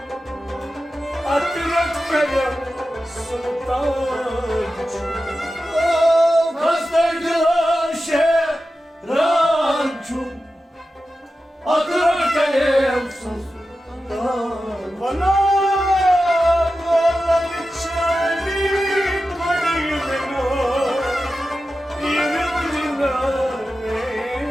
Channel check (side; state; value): both; normal; correlation 0.92